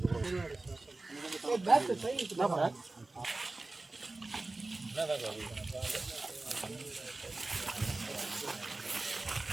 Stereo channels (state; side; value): quieter; left; 3.2 dB